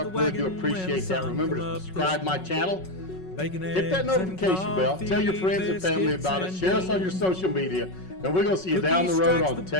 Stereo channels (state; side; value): late; right; 5.4 ms